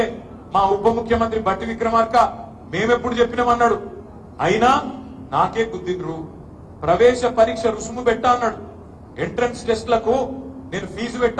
మా ఉప ముఖ్యమంత్రి బట్టి విక్రమార్క మేమెప్పుడు చెప్పినామన్నాడు, అయినా నాకే గుద్దిండ్రు. ప్రవేశ పరీక్ష రుసుము పెట్టా అన్నాడు, ఎంట్రన్స్ టెస్ట్లకు నేను ఫీజు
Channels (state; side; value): identical; both; correlation 1.00